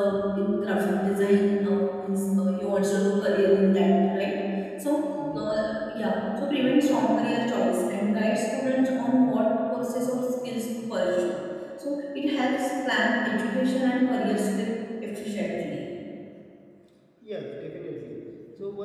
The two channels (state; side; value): identical; both; correlation 1.00